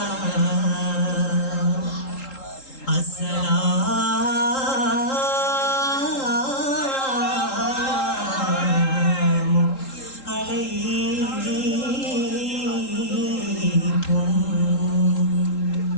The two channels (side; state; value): right; late; 3.8 ms